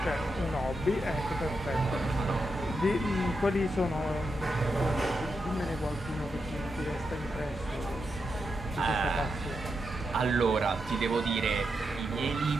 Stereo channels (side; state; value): both; normal; correlation 0.85